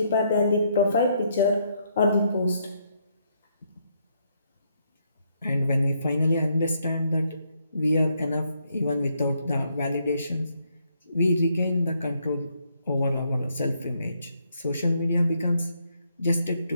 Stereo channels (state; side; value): inverted; both; correlation -0.74